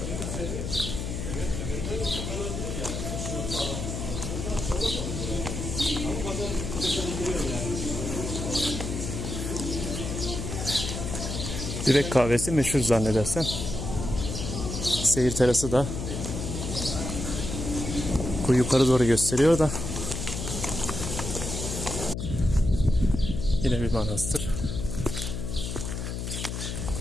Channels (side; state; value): left; noise; hum, 4 dB below the sound